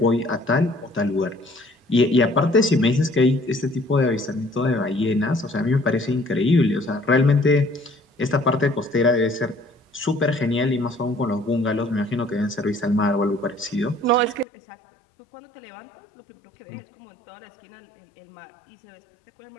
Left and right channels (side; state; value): right; drops out; at 14.5 s